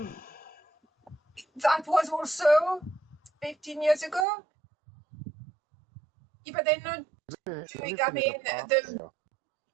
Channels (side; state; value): left; drops out; at 4.2 s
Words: was also 15 years ago. Yeah, but they're not doing. I mean,